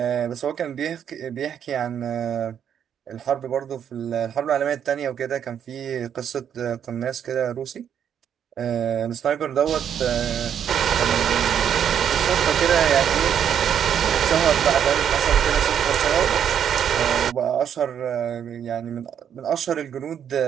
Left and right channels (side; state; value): left; quieter; 8.8 dB